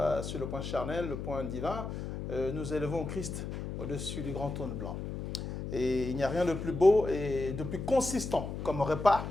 sur le point charnel, le point divin, nous élevons Christ au-dessus du grand trône blanc. Et il n'y a rien de plus beau et de plus consistant comme repas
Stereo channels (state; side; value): noise; left; hum, 6 dB below the sound